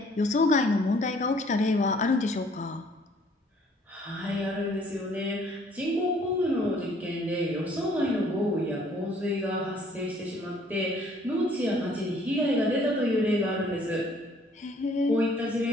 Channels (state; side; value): normal; both; correlation 0.60